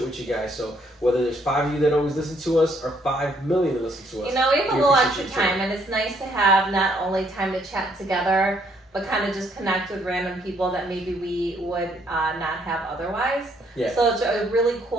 with you guys. So whether there's 5 of you that always listen to us or 5 million that listen to us, you know, we have a little extra time, and it's nice to have not only time to chat together, but kind of just connect with random people that maybe we would not have otherwise. Yeah. So it's a really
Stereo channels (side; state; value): both; normal; correlation 0.68